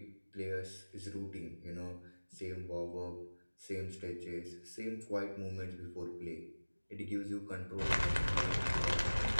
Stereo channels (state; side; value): inverted; both; correlation -1.00